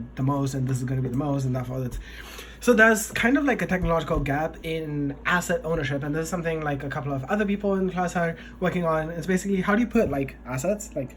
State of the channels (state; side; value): identical; both; correlation 1.00